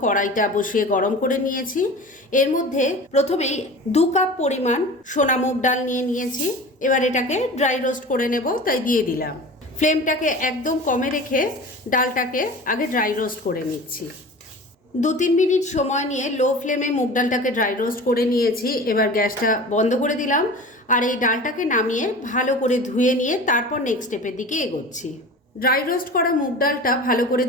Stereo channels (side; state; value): both; normal; correlation 0.36